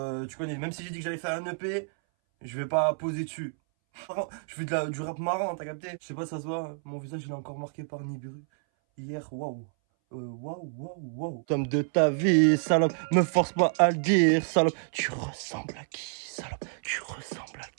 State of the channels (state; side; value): silent; left; 58 dB below the other